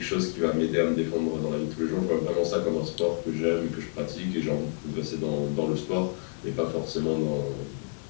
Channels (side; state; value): right; silent; 59 dB below the other